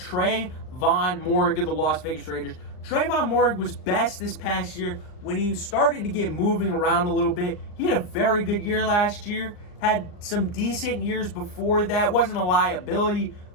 Moehrig of the Las Vegas Raiders. Trayvon Moehrig was best this past year when he started to get moving around a little bit. He had a very good year last year. Had some decent years before that. Wasn't a liability,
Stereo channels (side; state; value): right; late; 39 ms